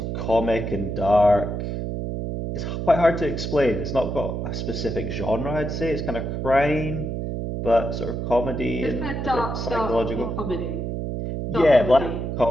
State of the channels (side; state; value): right; noise; hum, 3 dB below the sound